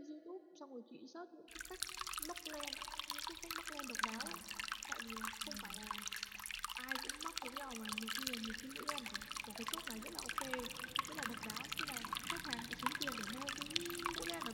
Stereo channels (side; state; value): both; identical; correlation 1.00